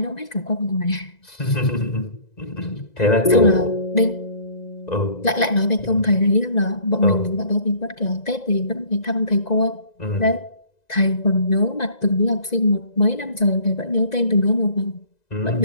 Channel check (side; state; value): right; late; 1.9 ms